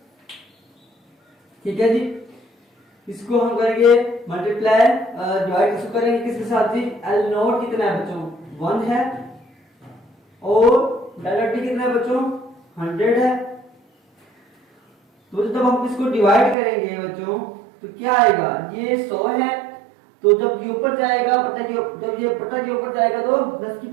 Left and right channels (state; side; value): drops out; left; at 16.6 s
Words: ठीक है जी, इसको हम करेंगे मल्टीप्लाई, डिवाइड इसको करेंगे किसके साथ जी, एल नॉट कितना है बच्चों 1 है, और डेल्टा टी कितना है बच्चों 100 है। तो जब हम इसको डिवाइड करेंगे बच्चों तो क्या आएगा, ये 100 है, तो जब ये ऊपर जाएगा जब ये बटा के ऊपर जाएगा तो 10 की